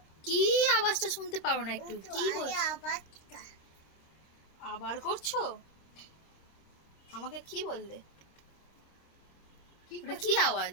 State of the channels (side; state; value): right; late; 26 ms